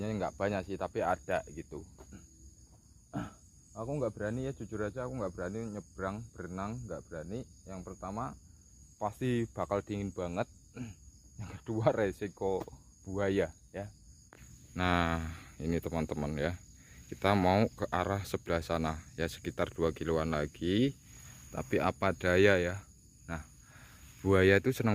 nggak banyak sih tapi ada gitu. Aku nggak berani ya, jujur aja aku nggak berani nyebrang berenang, nggak berani. Yang pertama pasti bakal dingin banget, yang kedua resiko buaya ya. Nah ini teman-teman ya, kita mau ke arah sebelah sana ya, sekitar 2 kiloan lagi. Tapi apa daya ya, nah buaya itu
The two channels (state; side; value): identical; both; correlation 1.00